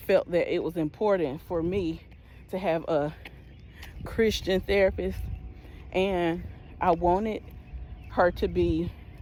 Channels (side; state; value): both; identical; correlation 1.00